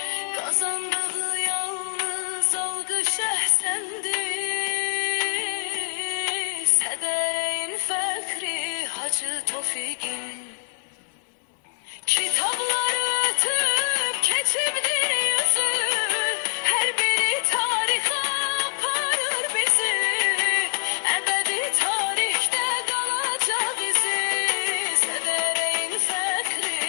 Kazandığı yalnız algı şehsendi. Sedereğin fekri Hacı Tofik'in. Kitapları ötüp geçimdir yüzü. Her biri tarihe aparır bizi. Ebedi tarihte kalacak izi. Sedereğin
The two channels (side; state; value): right; silent; digital silence